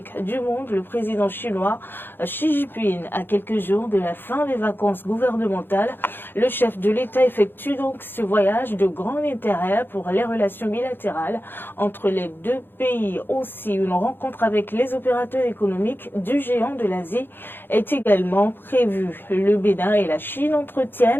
du monde, le président chinois Xi Jinping. À quelques jours de la fin des vacances gouvernementales, le chef de l'État effectue donc ce voyage de grand intérêt pour les relations bilatérales entre les deux pays. Aussi, une rencontre avec les opérateurs économiques du géant de l'Asie est également prévue. Le Bénin et la Chine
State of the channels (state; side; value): late; right; 0.10 ms